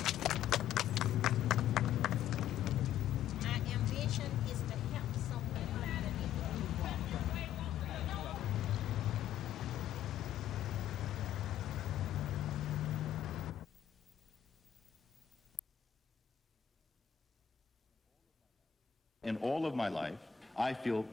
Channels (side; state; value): right; quieter; 9.9 dB